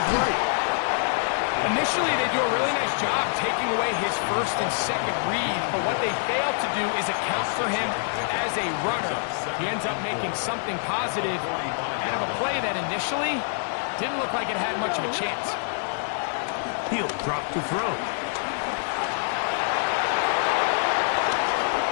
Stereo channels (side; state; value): right; silent; digital silence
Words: right. Initially, they do a really nice job taking away his first and second read, but what they failed to do is account for him as a runner. He ends up making something positive out of a play that initially didn't look like it had much of a chance. He'll drop to throw.